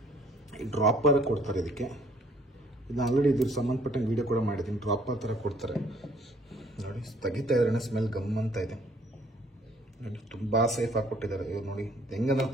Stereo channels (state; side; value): normal; both; correlation 0.60